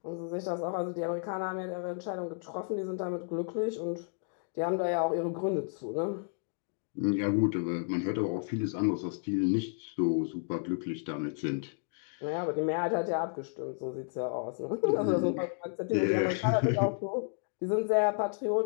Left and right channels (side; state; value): right; silent; 56 dB below the other